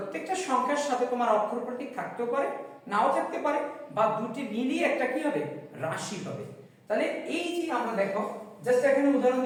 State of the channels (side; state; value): both; identical; correlation 1.00